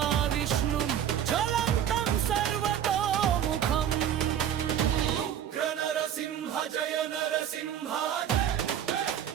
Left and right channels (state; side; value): quieter; left; 9.9 dB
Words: జ్వలంతం సర్వతోముఖం. ఉగ్ర నరసింహ జయ నరసింహ.